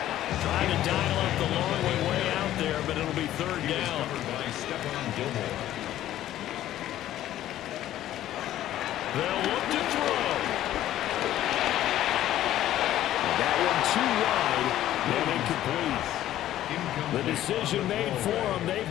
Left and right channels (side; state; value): right; quieter; 13.1 dB